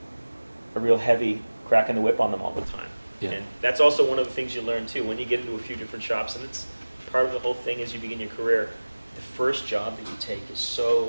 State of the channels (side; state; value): both; inverted; correlation -1.00